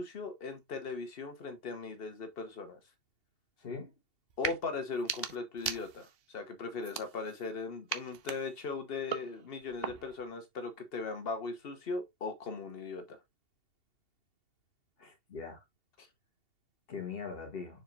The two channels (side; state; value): right; late; 2.7 ms